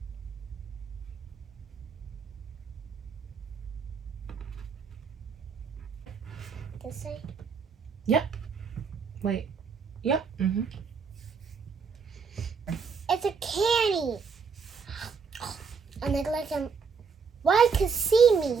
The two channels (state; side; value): quieter; left; 5.6 dB